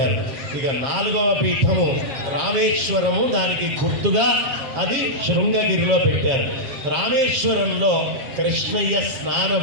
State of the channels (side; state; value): left; late; 7.5 ms